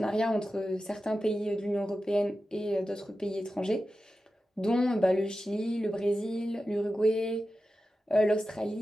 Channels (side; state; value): both; normal; correlation 0.92